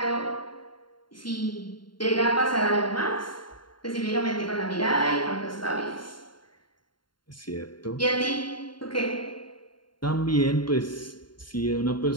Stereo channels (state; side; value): late; right; 0.72 ms